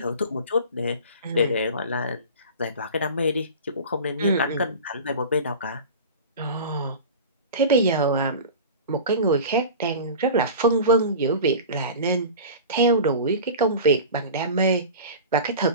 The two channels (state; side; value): inverted; both; correlation -0.35